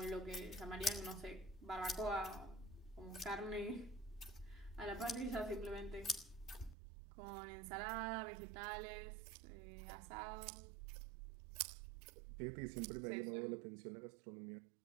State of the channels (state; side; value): drops out; left; at 6.8 s